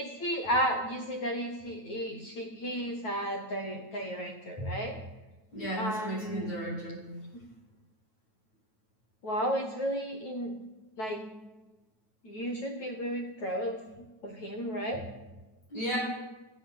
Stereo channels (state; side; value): late; right; 9.2 ms